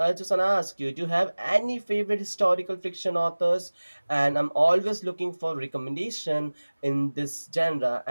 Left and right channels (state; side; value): inverted; both; correlation -1.00